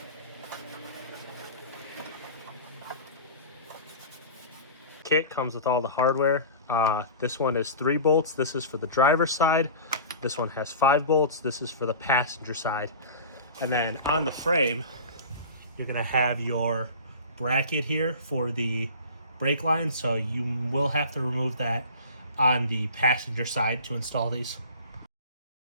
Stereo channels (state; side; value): inverted; both; correlation -0.37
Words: Kit comes with all the hardware. This one is 3 bolts. This is for the driver's side. This one has 5 bolts. This is for the passenger side. And then on the frame, you're gonna have your bracket here for the brake line. So you will have to remove that on the passenger side to install these.